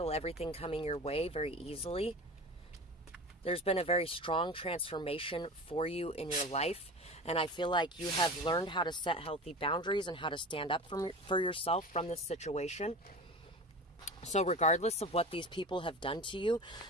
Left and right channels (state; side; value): normal; both; correlation 0.32